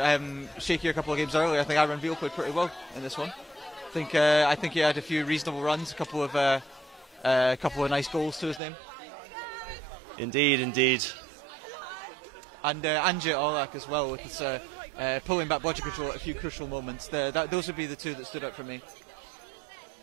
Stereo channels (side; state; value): left; drops out; at 8.6 s